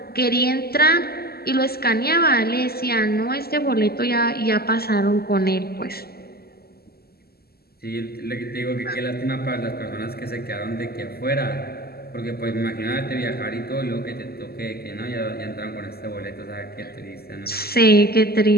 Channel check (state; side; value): late; right; 0.45 ms